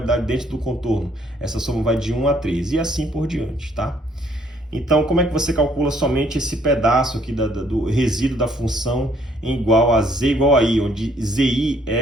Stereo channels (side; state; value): both; normal; correlation 0.65